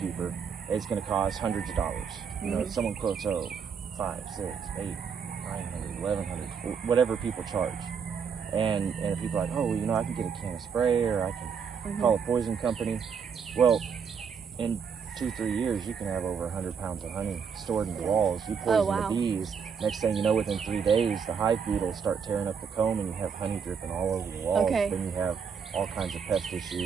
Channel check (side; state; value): left; quieter; 6.5 dB